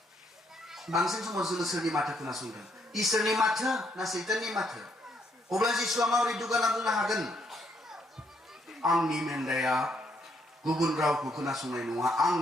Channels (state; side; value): normal; both; correlation 0.73